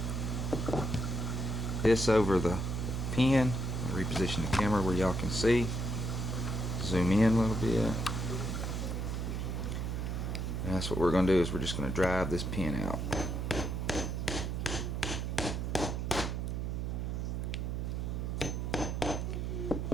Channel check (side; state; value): right; noise; hum, 2 dB below the sound